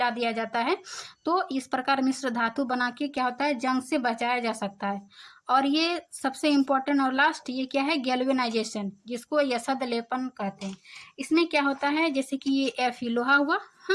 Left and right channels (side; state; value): both; identical; correlation 1.00